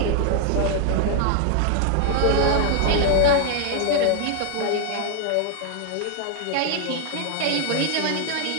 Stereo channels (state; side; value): different; both; correlation 0.00